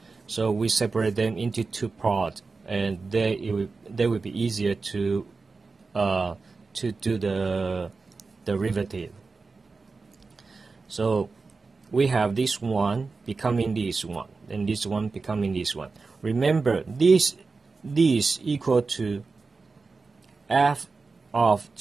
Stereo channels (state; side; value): quieter; left; 4.2 dB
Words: So we separate them into two parts, and they will be easier to do the derivative. So we have this one becoming this one, and this one becoming this one. Remember, this equal to f of